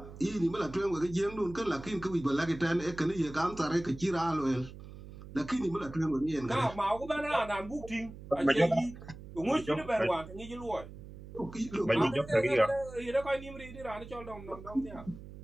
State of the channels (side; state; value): right; noise; hum, 15 dB below the sound